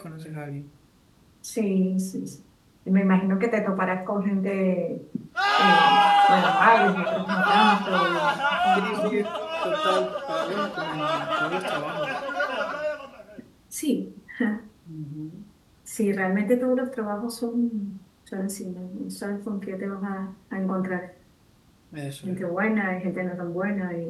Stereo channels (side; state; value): both; identical; correlation 1.00